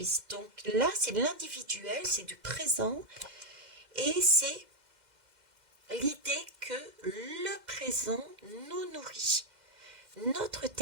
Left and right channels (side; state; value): left; late; 2.1 ms